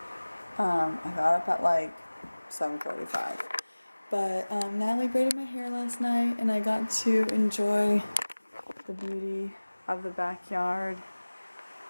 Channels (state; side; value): inverted; both; correlation -1.00